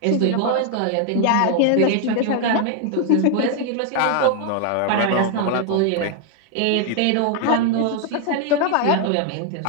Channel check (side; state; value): both; different; correlation 0.00